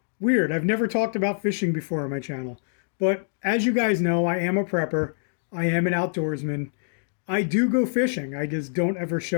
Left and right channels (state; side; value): silent; right; digital silence